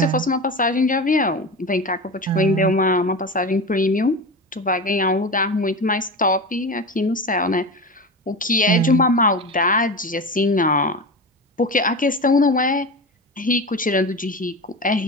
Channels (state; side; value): normal; both; correlation 0.26